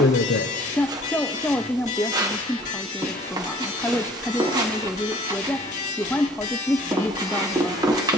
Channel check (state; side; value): normal; both; correlation 0.52